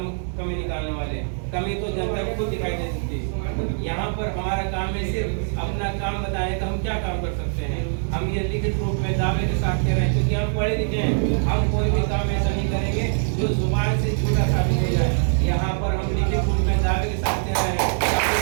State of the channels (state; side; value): silent; left; 63 dB below the other